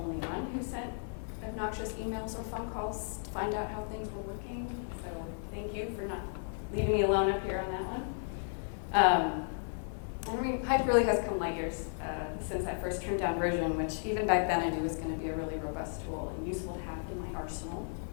one who sent obnoxious emails or phone calls to find out how things were working. So thank you for not leaving me alone up here on that one. Hype really has come light years since that first trimmed down version, which even back then I knew was going to be a really robust tool and useful to have in my arsenal.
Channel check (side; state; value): right; silent; digital silence